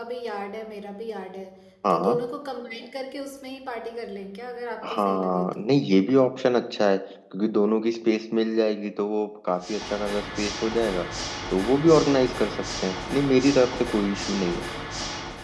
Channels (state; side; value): identical; both; correlation 1.00